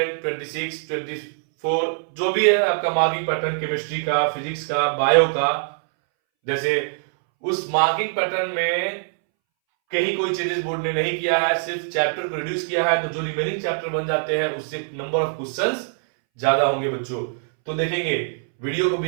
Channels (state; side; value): silent; left; 63 dB below the other